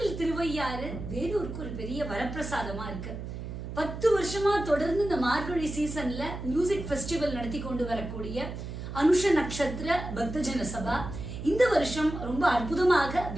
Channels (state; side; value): noise; right; hum, 8 dB below the sound